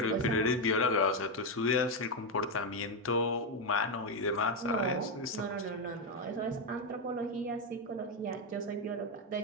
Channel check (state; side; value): normal; both; correlation 0.06